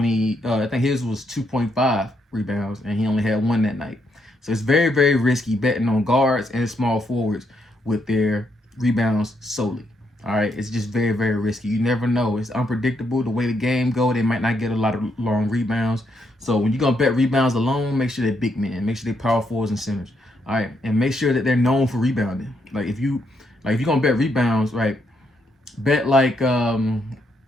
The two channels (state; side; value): normal; both; correlation 0.77